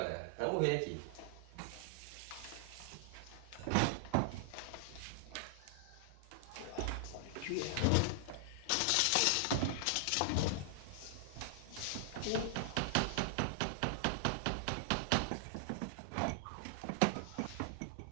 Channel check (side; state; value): both; different; correlation -0.01